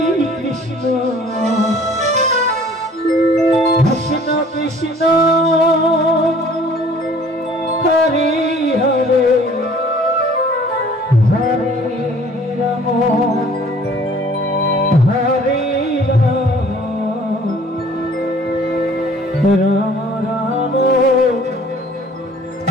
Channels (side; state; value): both; normal; correlation 0.53